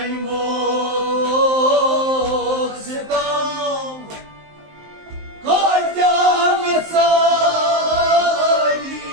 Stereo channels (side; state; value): left; late; 19 ms